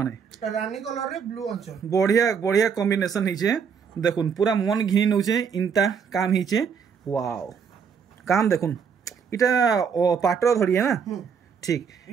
माने रानी कलर रे ब्लू अंचल बढ़िया कॉम्बिनेशन होइछे देखुन पूरा मन घिनी नउछे इनता काम होइछे वाओ काम देखुन इटा पाटर धड़ी है ना ठीक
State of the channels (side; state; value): left; quieter; 6.7 dB